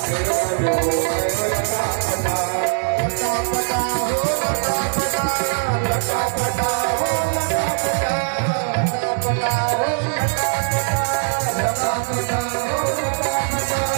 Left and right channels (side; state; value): left; silent; 65 dB below the other